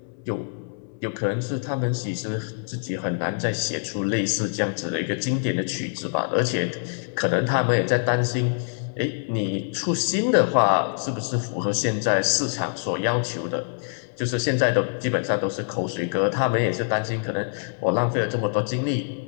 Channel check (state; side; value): silent; right; 61 dB below the other